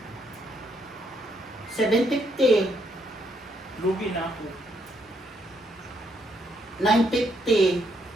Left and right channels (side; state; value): both; normal; correlation 0.74